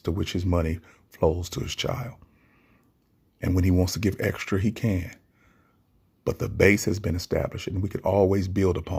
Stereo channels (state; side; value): identical; both; correlation 1.00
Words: which his money flows to his child. And when he wants to give extra, he can. But the base has been established, and we can always build